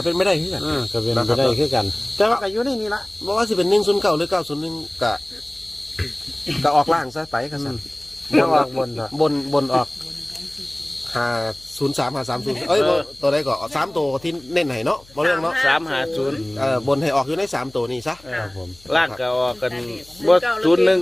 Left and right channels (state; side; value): noise; left; hum, 26 dB below the sound